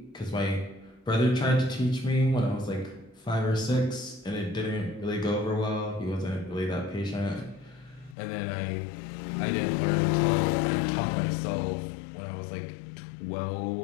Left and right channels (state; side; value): drops out; right; at 8.2 s